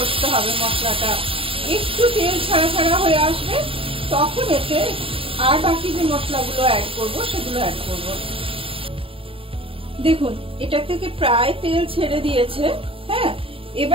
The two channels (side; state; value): left; late; 0.26 ms